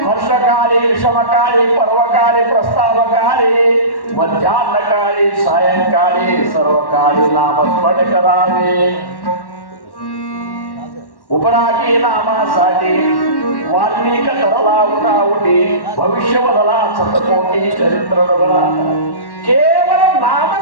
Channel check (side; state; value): right; late; 1.1 ms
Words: हर्षकाली विषमकाली पर्वकाली प्रस्तावकाली मध्यान्हकाली सायंकाली सर्वकाली नामस्मरण करावे. उपरागी नामासाठी वाल्मिक तरला उठाउटी भविष्य बदला शतकोटी चरित्र डोगरा. ಕೇವಲ